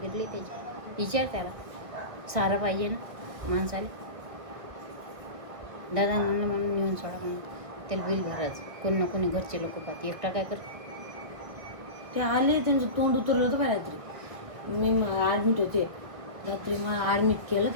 फिरली त्याची. विचार त्याला, सारा पाहिजे ना माणसाला. दादा म्हणलं म्हणून नेऊन सोडा म्हणून. त्याला बिल भरायचं. कोण ना कोणी घरचे लोक पाहते. एकटा काय कर. ते आले, त्यांचं तोंड उतरलं होतं बाय रात्री. मी ॲडमिट होते रात्री. मला ॲडमिट केलं.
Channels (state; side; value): late; left; 1.6 ms